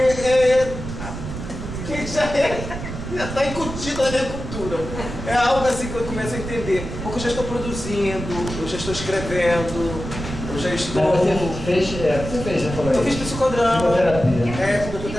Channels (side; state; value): right; noise; rumble, 8 dB below the sound